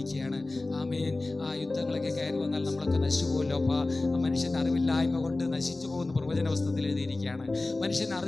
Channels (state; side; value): quieter; right; 3.1 dB